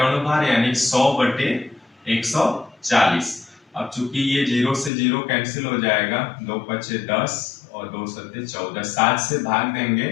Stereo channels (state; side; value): drops out; right; at 4.9 s